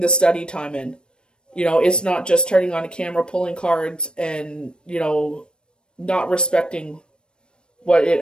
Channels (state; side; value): late; right; 0.053 ms